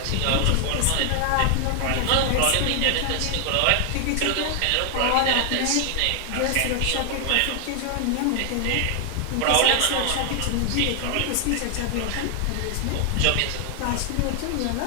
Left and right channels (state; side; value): different; both; correlation 0.00